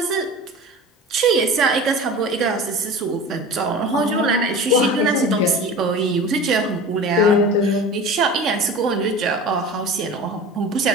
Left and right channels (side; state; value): both; normal; correlation 0.35